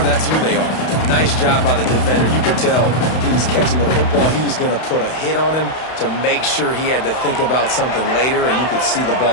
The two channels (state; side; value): late; right; 31 ms